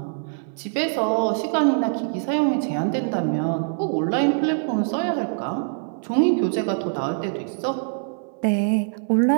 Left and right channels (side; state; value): left; silent; 58 dB below the other